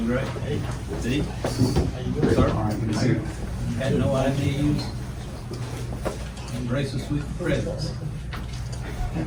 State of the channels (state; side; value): identical; both; correlation 1.00